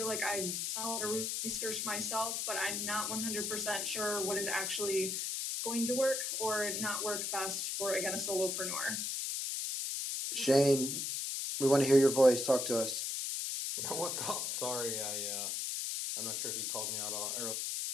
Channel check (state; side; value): noise; left; hiss, 1 dB below the sound